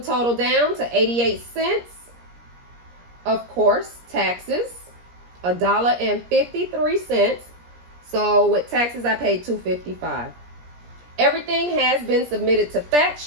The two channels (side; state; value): left; late; 17 ms